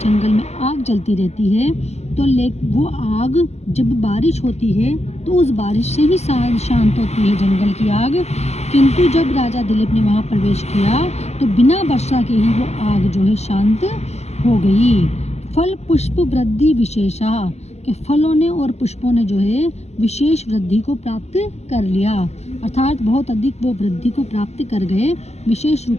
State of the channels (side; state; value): right; late; 0.31 ms